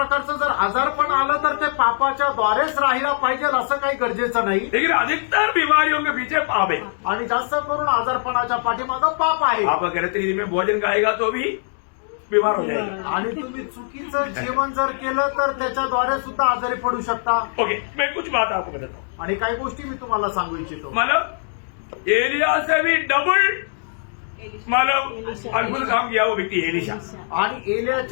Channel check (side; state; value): right; silent; digital silence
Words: जर आजारपण आलं तर ते पापाच्या द्वारेच राहिला पाहिजे असं काही गरजेचं नाही। लेकिन अधिकतर बीमारियों के पीछे पाप है। आणि जास्त करून आजारपणाच्या पाठीमागं पाप आहे। आप गलत रीति में भोजन खाएगा तो भी बीमार हो जाएगा। आणि तुम्ही चुकीचं जेवण जर केलं तर त्याच्याद्वारे सुद्धा आजारी पडू शकता। ओके, मैं कुछ बात आपको बताता हूँ। आणि काही गोष्टी मी तुम्हाला सांगू इच्छितो। मतलब एलिया से भी डबल मतलब अद्भुत काम किया वो व्यक्ति एलिशा। आणि